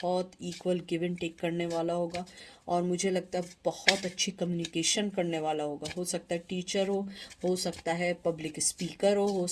इक्वल गिव एंड टेक करने वाला होगा, और मुझे लगता है बहुत अच्छी कम्युनिकेशन करने वाला होगा। हो सकता है टीचर हो सकता है पब्लिक स्पीकर हो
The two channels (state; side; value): identical; both; correlation 1.00